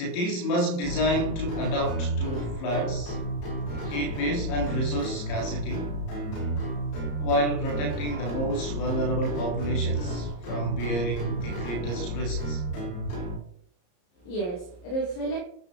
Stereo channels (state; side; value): late; right; 34 ms